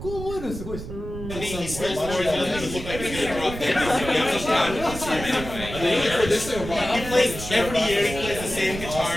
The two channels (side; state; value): right; noise; rumble, 9 dB below the sound